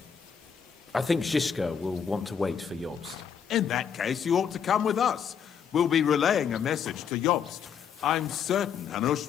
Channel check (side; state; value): right; quieter; 7.5 dB